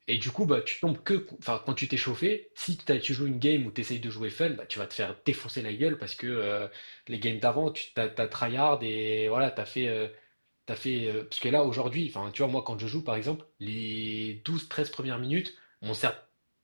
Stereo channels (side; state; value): both; inverted; correlation -1.00